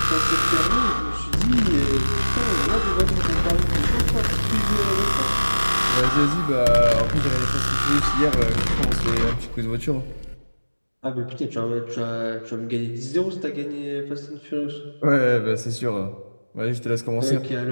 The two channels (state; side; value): inverted; both; correlation -1.00